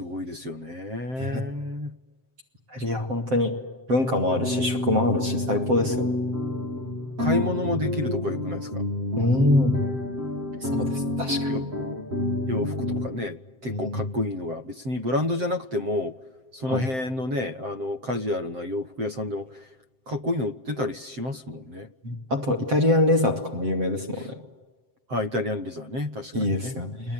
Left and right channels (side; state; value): left; late; 7.7 ms